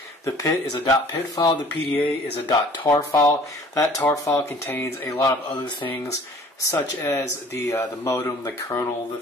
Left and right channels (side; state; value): both; normal; correlation 0.51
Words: The PIT is a .PIT file, the PDA is a .tar file. That tar file contains a lot of other things, such as the modem, the kernel, the